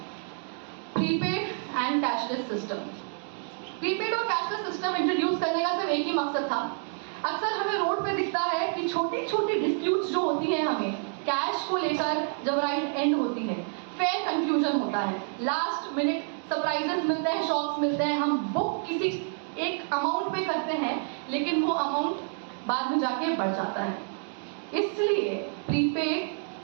prepaid and cashless system. Prepaid और कैशलेस सिस्टम इंट्रोड्यूस करने का सिर्फ एक ही मकसद था। अक्सर हमें रोड पे दिखता है कि छोटी छोटी डिस्प्यूट्स जो होती हैं हमें कैश को लेकर जब राइड एंड होती है, फेयर कंफ्यूजन होता है, लास्ट मिनट सरप्राइजेस मिलते हैं, शॉक्स मिलते हैं। हम बुक किसी एक अमाउंट पे करते हैं लेकिन वो अमाउंट बाद में जाके बढ़ जाता है। इसलिए प्रीपेड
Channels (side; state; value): left; silent; 56 dB below the other